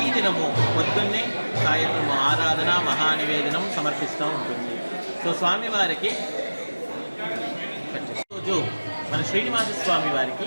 పొద్దున్నే సాయంత్రం ఆరాధన మహానివేదనం సమర్పిస్తూ ఉంటుంది. సో స్వామివారికి రోజు మన శ్రీనివాస స్వామి వారికి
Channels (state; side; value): inverted; both; correlation -1.00